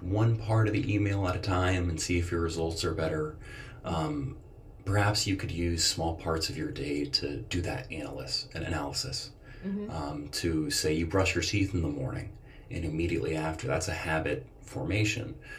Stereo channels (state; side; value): identical; both; correlation 1.00